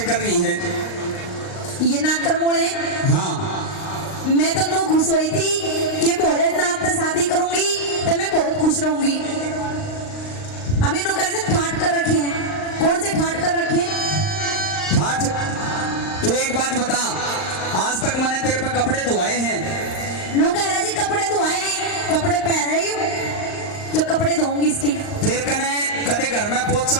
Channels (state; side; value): late; right; 38 ms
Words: कर रही है। ये नाकरमोड़ है। हाँ मैं तो नो खुश हुई थी कि भोलेनाथ से शादी करूंगी तो मैं बहुत खुश रहूंगी। अभी नो करे तो ठाट कर रखे हैं। कौन से ठाट कर रखे हैं? ठाट। तू एक बात बता, आज तक मैंने तेरे पे कपड़े धुआए हैं? नो कह रहा जी कपड़े धोए हैं, कपड़े पहन रही हूँ जो कपड़े धोऊंगी इसके। फिर कने कदे घर में